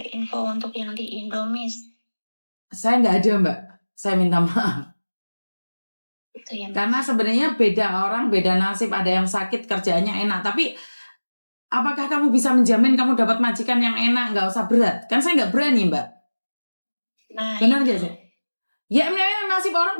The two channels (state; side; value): inverted; both; correlation -1.00